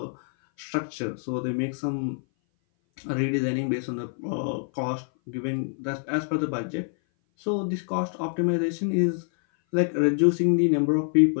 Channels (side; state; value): right; silent; 58 dB below the other